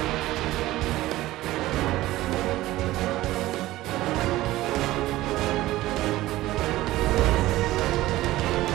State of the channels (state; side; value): quieter; left; 16.7 dB